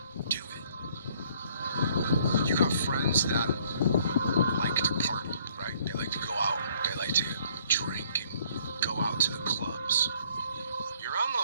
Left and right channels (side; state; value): both; inverted; correlation -0.62